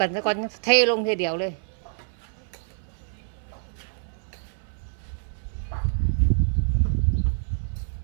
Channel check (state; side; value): silent; left; 56 dB below the other